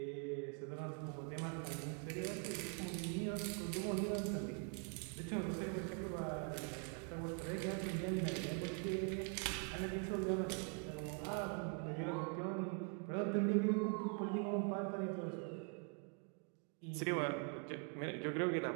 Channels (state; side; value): quieter; left; 37.3 dB